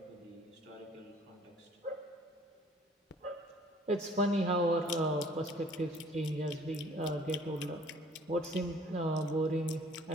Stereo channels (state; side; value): normal; both; correlation 0.55